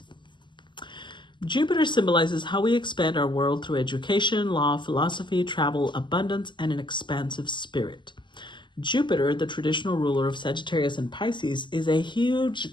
Jupiter symbolizes how we expand our world through education, law, philosophy, travel, abundance, and an expansive spirit. Jupiter, the traditional ruler of Sagittarius and Pisces, is a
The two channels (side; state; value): right; late; 0.22 ms